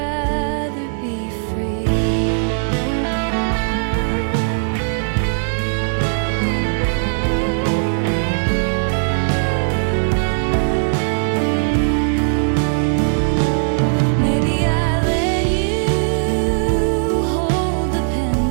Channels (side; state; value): left; silent; digital silence